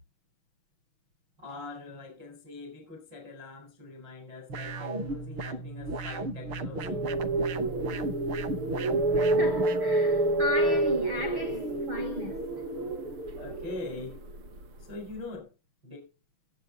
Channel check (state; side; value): late; left; 6.1 ms